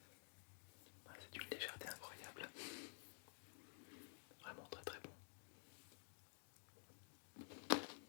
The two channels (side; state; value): right; silent; digital silence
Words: C'est d'une légèreté incroyable, vraiment très très bon.